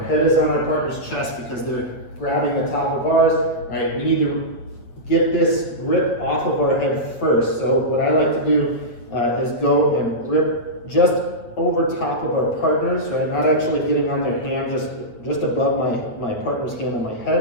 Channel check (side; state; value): right; late; 8.5 ms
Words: head is on our partner's chest because they're grabbing the top of ours, right, we need to get this grip off of our head first. So what I like to do is go and grip just over top of our partners, right? Not actually getting on their hand, just above my partner's hand on my